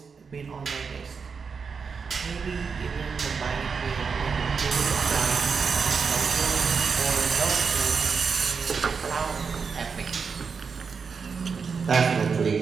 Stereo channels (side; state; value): left; quieter; 5.6 dB